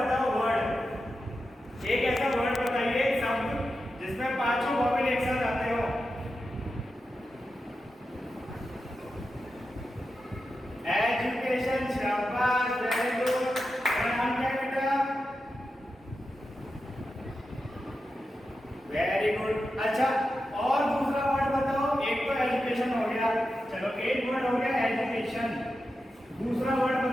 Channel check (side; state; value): both; normal; correlation 0.90